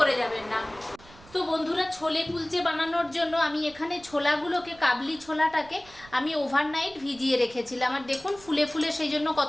যাবেন না। তো বন্ধুরা, ছোলে কুলচে বানানোর জন্য আমি এখানে ছোলাগুলোকে, কাবলি ছোলাটাকে আমি ওভারনাইট ভিজিয়ে রেখেছিলাম, আর দেখুন ফুলে ফুলে সেই জন্য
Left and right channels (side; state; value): right; noise; rumble, 23 dB below the sound